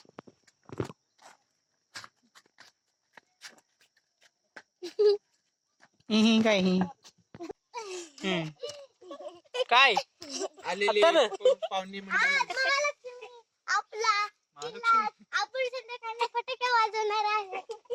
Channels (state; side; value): identical; both; correlation 1.00